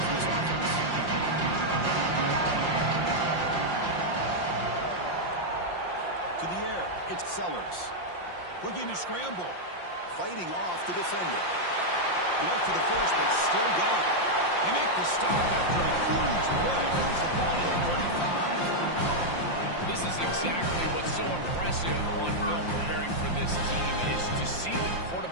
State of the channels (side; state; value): right; late; 5.7 ms